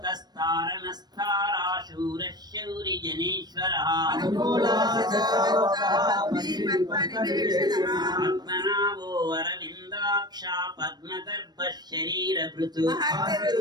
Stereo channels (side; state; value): left; late; 0.20 ms